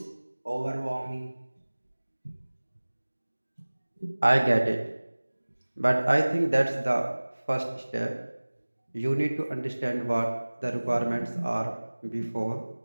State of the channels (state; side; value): inverted; both; correlation -1.00